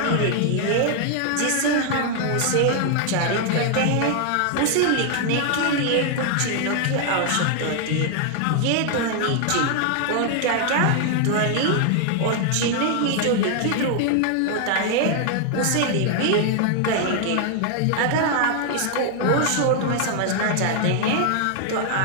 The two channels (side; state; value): both; different; correlation 0.00